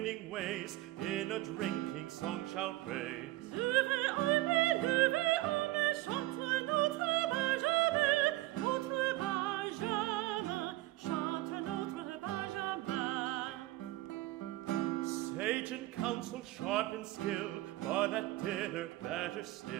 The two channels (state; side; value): quieter; left; 17.5 dB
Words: ways in a drinking song shall praise. Levez armez, chante notre Benjamin, notre Benjamin, chante notre Benjamin. Sage in counsel, sharp in skill, but at dinner better